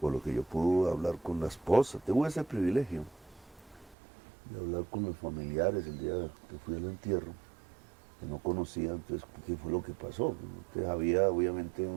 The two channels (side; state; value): left; drops out; at 4.0 s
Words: Por lo que yo pude hablar con la esposa. Tuve ese privilegio de hablar con los familiares el día que fui al entierro, que no conocía, entonces, ¿qué fue lo que pasó? Entonces había obviamente